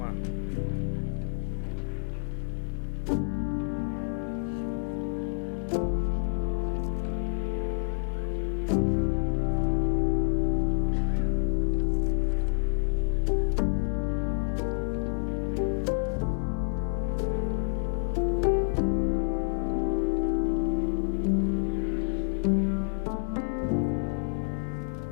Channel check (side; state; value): right; silent; digital silence